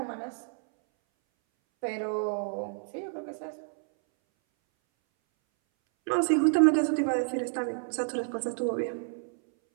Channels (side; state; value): left; silent; 58 dB below the other